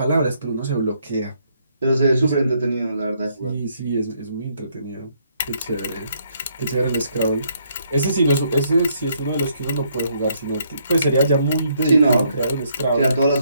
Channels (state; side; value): inverted; both; correlation -0.71